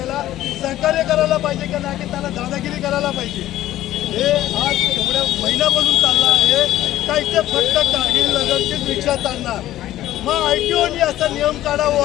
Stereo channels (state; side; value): quieter; right; 14.0 dB